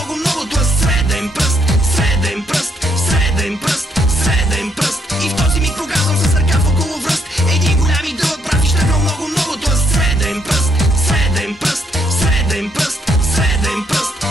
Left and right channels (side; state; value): both; normal; correlation 0.73